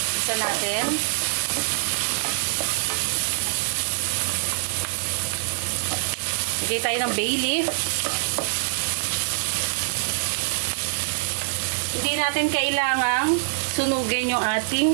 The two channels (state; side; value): silent; left; digital silence